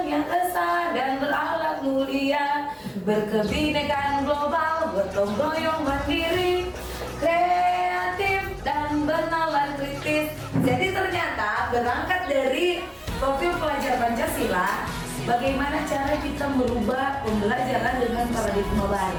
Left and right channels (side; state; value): both; identical; correlation 1.00